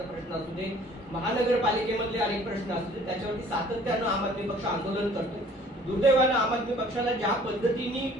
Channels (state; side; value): normal; both; correlation 0.53